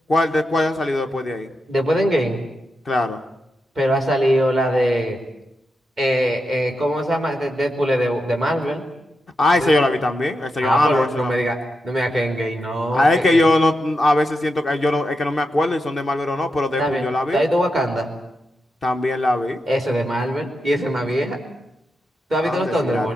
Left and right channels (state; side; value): normal; both; correlation 0.87